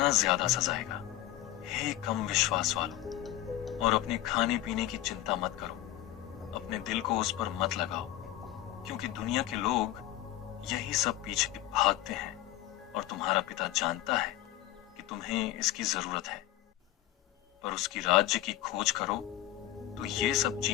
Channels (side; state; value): right; quieter; 14.0 dB